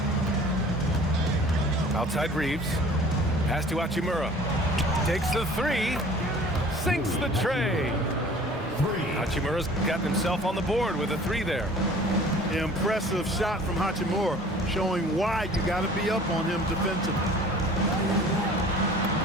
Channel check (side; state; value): both; normal; correlation 0.48